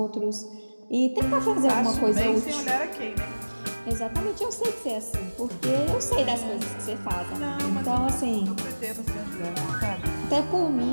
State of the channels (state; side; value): inverted; both; correlation -1.00